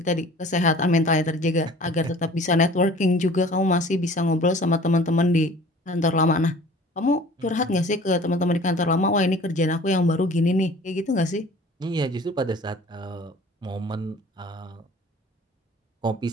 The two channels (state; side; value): normal; both; correlation 0.47